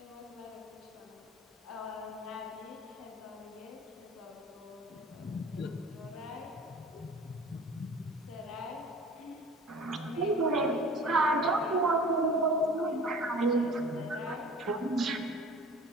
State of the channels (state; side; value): normal; both; correlation 0.43